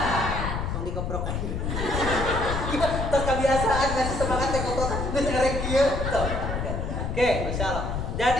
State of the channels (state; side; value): noise; left; rumble, 2 dB below the sound